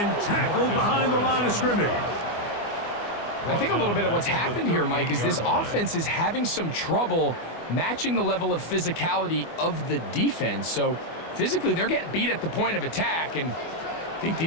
tackled behind the line of scrimmage. I think a little bit of what's happened here, Mike, is this offense is having some trouble matching the level of physicality of the defense. So physically, they're getting beat at the point of attack, and I think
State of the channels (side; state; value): right; late; 24 ms